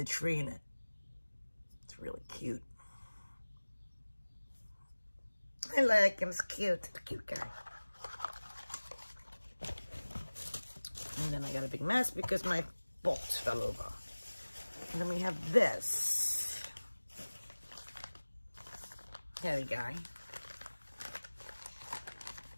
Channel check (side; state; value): both; inverted; correlation -1.00